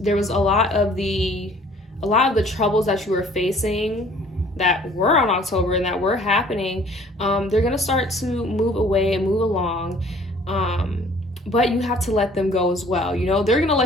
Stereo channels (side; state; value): both; normal; correlation 0.54